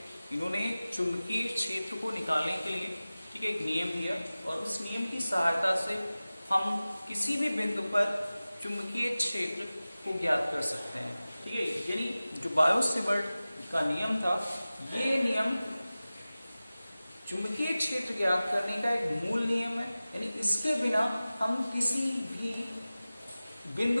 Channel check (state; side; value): inverted; both; correlation -0.97